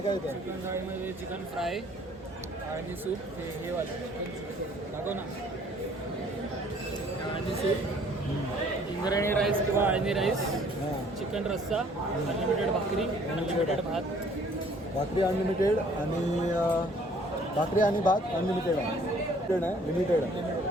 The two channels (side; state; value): both; normal; correlation 0.58